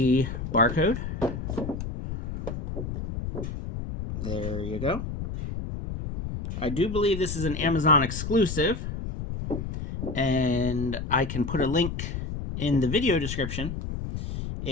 barcode, there you go. I do believe this is an Amazon exclusive, and I can put a link in the video description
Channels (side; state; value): left; noise; rumble, 5 dB below the sound